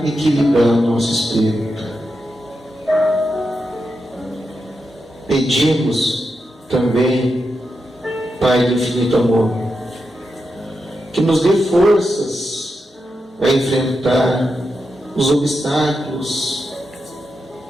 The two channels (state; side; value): normal; both; correlation 0.87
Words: equilibrar o nosso espírito. Pedimos também, Pai do infinito amor, que nos dê forças a enfrentar os obstáculos